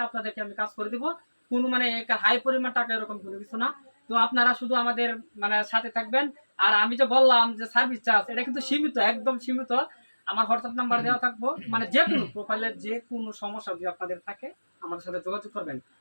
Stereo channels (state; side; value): inverted; both; correlation -1.00